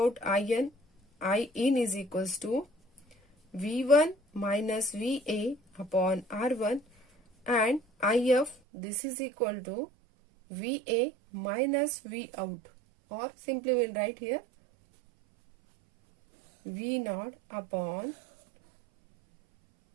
IN. I in is equals to V1 minus VA upon R1, and IF, this is equal to VA minus V out, or simply we'll write here V naught upon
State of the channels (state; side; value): drops out; left; at 8.6 s